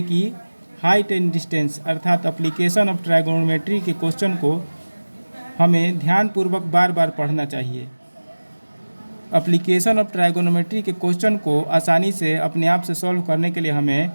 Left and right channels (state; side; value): inverted; both; correlation -1.00